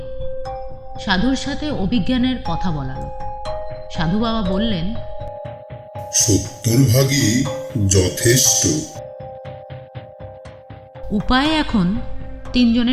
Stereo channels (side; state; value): both; identical; correlation 1.00